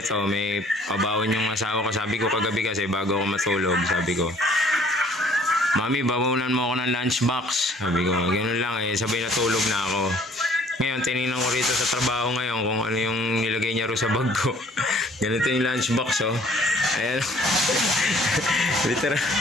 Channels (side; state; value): both; normal; correlation 0.57